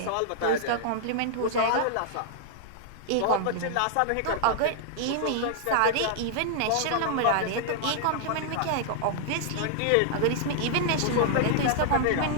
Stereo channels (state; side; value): different; both; correlation -0.01